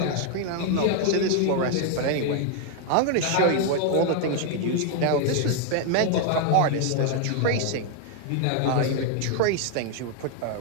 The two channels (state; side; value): different; both; correlation 0.00